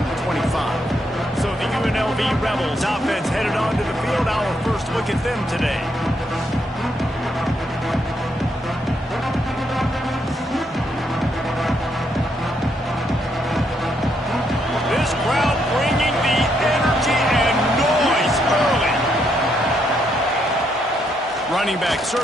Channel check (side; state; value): both; normal; correlation 0.76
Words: the 25. So the UNLV Rebels offense headed onto the field. Our first look at them today. This crowd bringing the energy and noise early. Running back